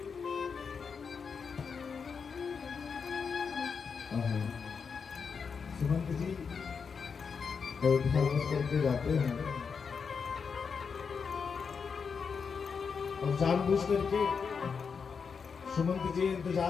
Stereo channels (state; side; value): quieter; right; 5.8 dB